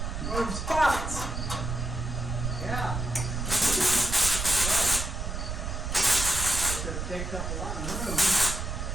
One of them spots. Yeah. It takes up a lot of room.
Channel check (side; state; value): right; noise; rumble, 4 dB below the sound